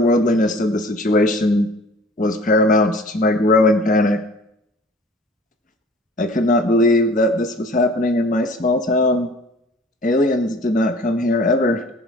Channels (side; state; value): both; normal; correlation 0.48